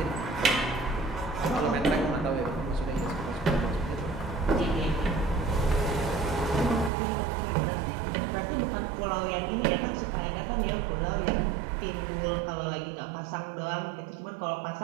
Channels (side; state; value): left; drops out; at 6.9 s